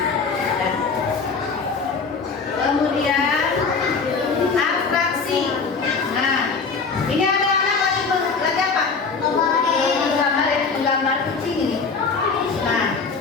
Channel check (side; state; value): right; quieter; 4.9 dB